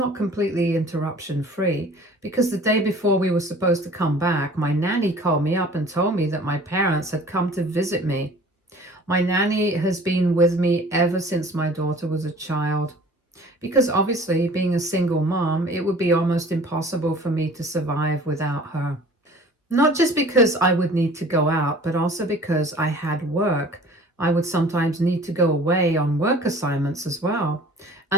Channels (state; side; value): normal; both; correlation 0.47